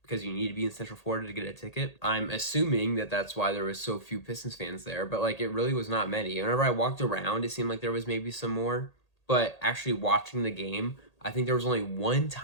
because you need to be in Central Florida to get a ticket. I'm assuming that that's why there was so few Pistons fans there, but it really was not many. Whenever I walked around, it seemed like there was maybe some more, but actually watching the game, I think there was only one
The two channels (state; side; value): late; right; 1.8 ms